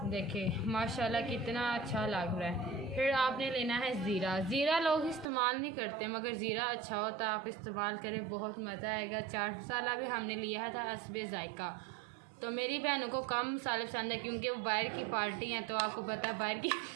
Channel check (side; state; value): left; drops out; at 5.3 s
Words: देखिए माशाल्लाह कितना अच्छा लग रहा है। फिर आपने लेना है ज़ीरा। ज़ीरा लोग इस्तेमाल नहीं करते, मगर ज़ीरा अच्छा होता है, आप इस्तेमाल करें, बहुत मज़ा आएगा। चाट मसाला भी हमने लिया था हस्बे जायका। तो मेरी बहनों को कम मसाले पसंद है क्योंकि वो बाहर की पार्टी हैं, तो आपको पता है बाहर